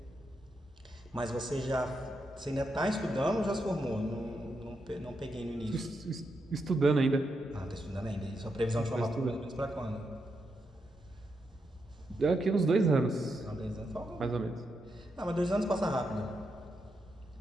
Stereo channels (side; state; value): both; normal; correlation 0.83